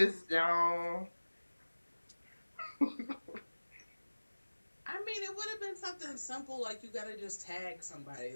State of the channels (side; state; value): both; inverted; correlation -1.00